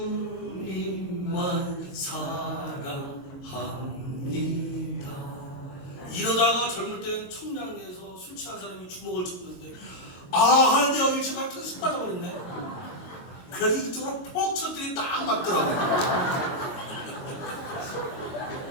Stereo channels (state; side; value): late; right; 22 ms